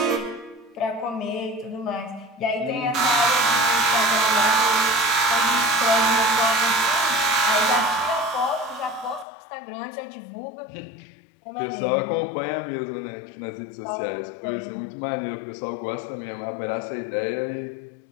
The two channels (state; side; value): drops out; right; at 9.2 s